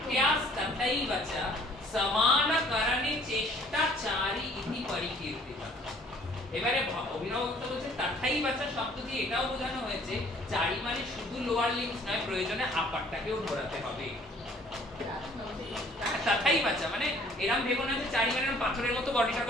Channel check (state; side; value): normal; both; correlation 0.57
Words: তথৈবচা সমানকরণে চেষ্টাচারী ইতি পরিকীর্তিতা। এবারে অভিনব গুপ্ত বলছে তথৈবচা শব্দ দিয়ে এটাও বোঝানো হয়েছে চারি মানে শুধু লোয়ার লিম্বস নয়, প্রয়োজনে আপারটাকেও ঘোরাতে হবে। তথৈবচা মানে এরকম ভেবো না যে চারি মানে পাথরের মতো বডিটা